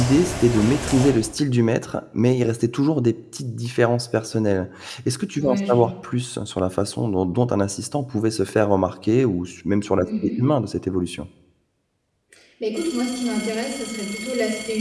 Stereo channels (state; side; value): identical; both; correlation 1.00